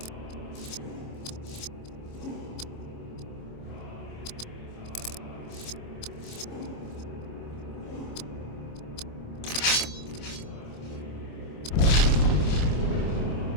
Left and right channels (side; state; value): right; late; 26 ms